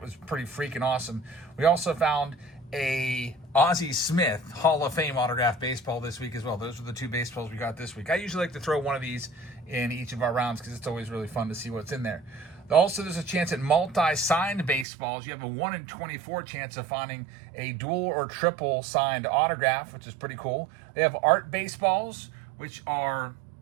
pretty freaking awesome. We also found a Ozzie Smith Hall of Fame autographed baseball this week as well. Those are the 2 baseballs we got this week. I usually like to throw one of these in each of our rounds because it's always really fun to see what's in there. Also, there's a chance at multi-signed baseballs. You have a 1 in 24 chance of finding a dual or triple signed autograph, which is pretty cool. They have art baseballs, which are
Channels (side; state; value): left; drops out; at 14.9 s